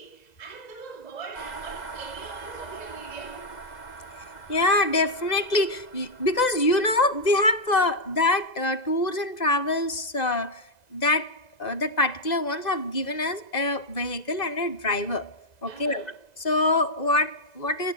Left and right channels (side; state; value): right; late; 2.0 ms